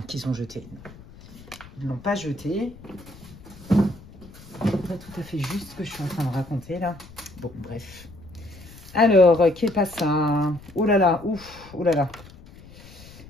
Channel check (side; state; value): left; noise; rumble, 20 dB below the sound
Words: qu'ils ont jetées. Ils ne l'ont pas jetée. C'est pas tout à fait juste ce que je suis en train de raconter, là. Bon, bref. Alors, qu'est pas ça? Oh là là, ouf, oh là là.